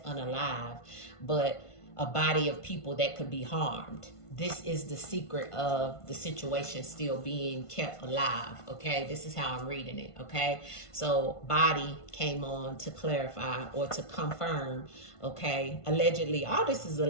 but a body of people that could be harmed. This is the secret of the situation still being kept alive. Okay, this is how I'm reading it. Okay, so body came on to clarify or to confirm. Okay, allegedly, all this is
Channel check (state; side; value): late; right; 1.5 ms